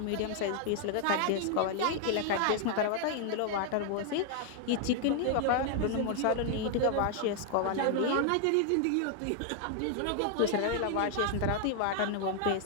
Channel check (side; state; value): both; different; correlation 0.00